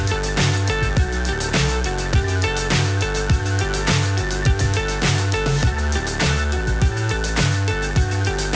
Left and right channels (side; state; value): both; identical; correlation 1.00